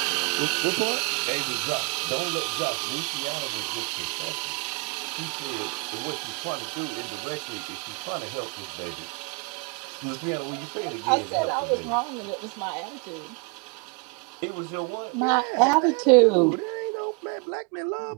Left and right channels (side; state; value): left; quieter; 31.5 dB